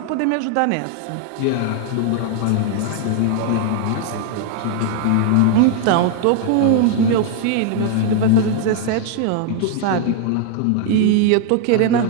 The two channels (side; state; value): both; different; correlation 0.00